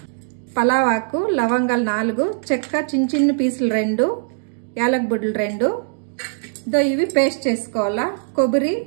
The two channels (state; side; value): silent; left; digital silence